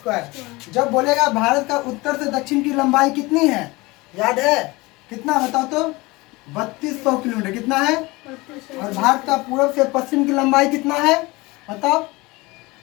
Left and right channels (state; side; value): quieter; right; 22.8 dB